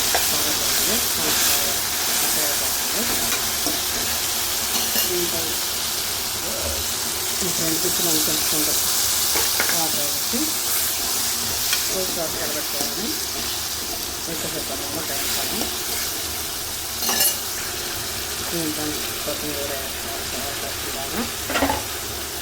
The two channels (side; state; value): both; identical; correlation 1.00